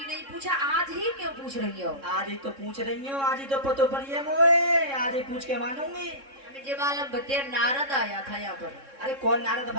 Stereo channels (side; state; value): left; late; 3.6 ms